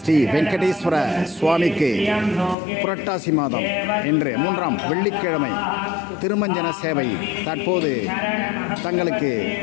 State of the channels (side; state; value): right; drops out; at 2.6 s